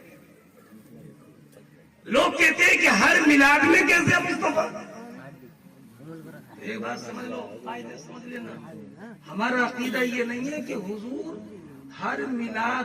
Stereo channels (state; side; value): identical; both; correlation 1.00